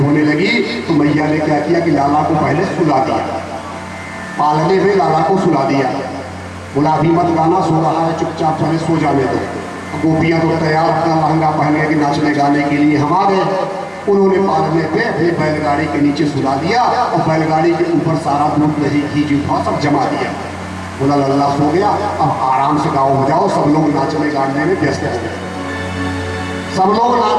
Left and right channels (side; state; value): both; identical; correlation 1.00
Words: लगी तो मैया ने क्या किया कि लाला को पहले सुला दिया, पालने में लाला को सुला दिया। बोला अभी मत गाना, सो रहा है, चुपचाप पहले सो जाने दो। गोपियां तो तैयार अपना लहंगा पहनने के नाचने गाने के लिए हम आ गए। उन्होंने पालने पे अपनी बैलगाड़ी के नीचे सुला दिया और बैलगाड़ी के ऊपर सारा दूध दही घी जूठा सब जमा दिया। बोला लल्ला सो गया, अब आराम से गाओ बजाओ। सब लोग नाचने गाने में व्यस्त हो गए, सब लोग